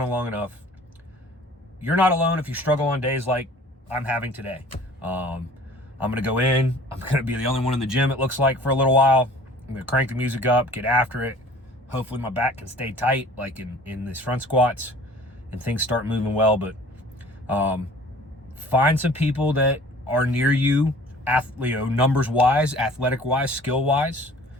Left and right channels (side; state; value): both; normal; correlation 0.48